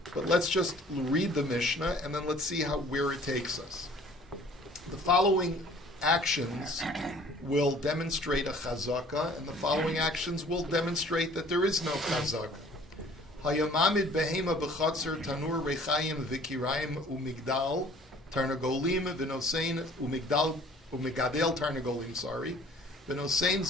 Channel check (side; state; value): both; normal; correlation 0.52